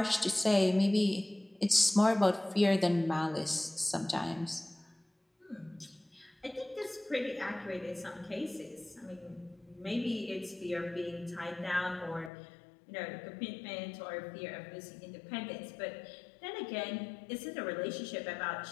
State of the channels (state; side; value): drops out; right; at 12.3 s